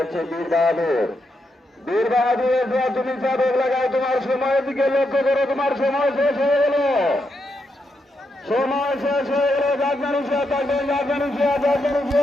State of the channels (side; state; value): both; normal; correlation 0.82